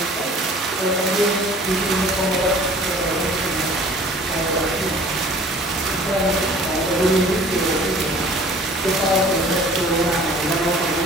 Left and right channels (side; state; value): both; normal; correlation 0.49